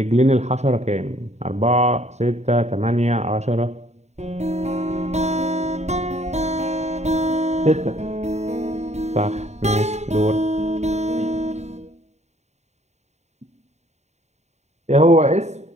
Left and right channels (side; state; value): left; late; 0.32 ms